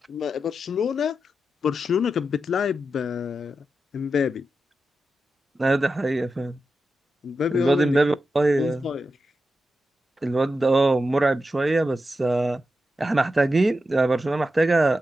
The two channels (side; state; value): both; normal; correlation 0.89